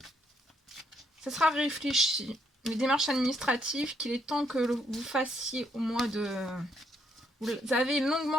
ça sera réfléchi. Les démarches administratives, qu'il est temps que vous fassiez au mois de... Vous avez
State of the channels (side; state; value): both; normal; correlation 0.73